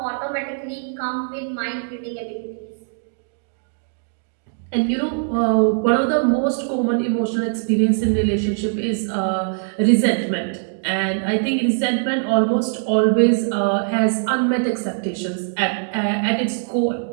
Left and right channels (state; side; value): silent; left; digital silence